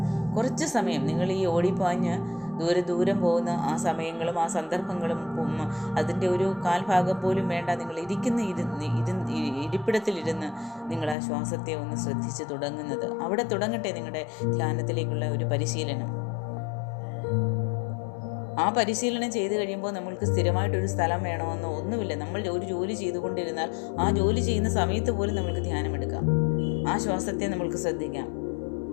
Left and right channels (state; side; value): drops out; right; at 11.2 s